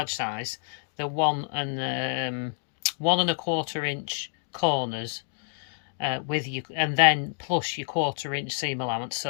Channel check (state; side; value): silent; right; digital silence